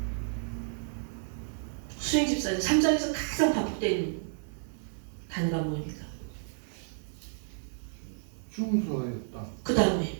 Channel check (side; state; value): left; silent; digital silence